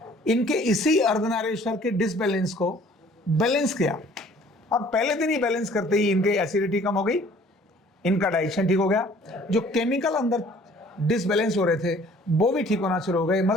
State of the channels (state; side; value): normal; both; correlation 0.54